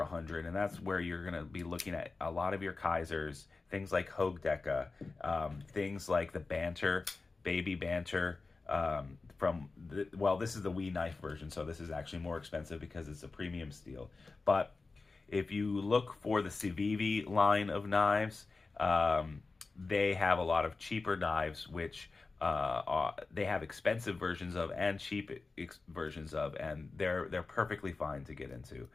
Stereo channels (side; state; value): right; quieter; 3.9 dB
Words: and that's where you're going to be looking at a lot of your Kaisers, things like Hogue Deca, things like the Banter, Baby Banter, this is the Wee knife version, so this is actually more expensive because it's a premium steel. But if you look for the Civivi line of knives, they have a lot of cheaper knives, which they have expensive versions of and cheap versions of, and they're perfectly fine to get into.